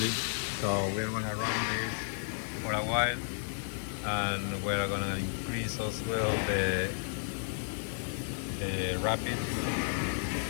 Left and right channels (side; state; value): right; silent; digital silence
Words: So we're gonna run this for a while, and we're gonna increase as well the rapid